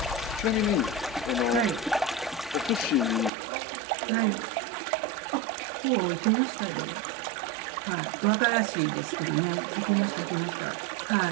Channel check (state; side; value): drops out; left; at 3.3 s